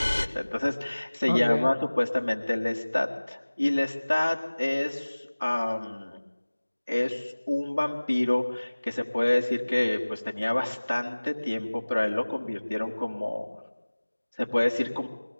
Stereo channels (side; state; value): both; inverted; correlation -1.00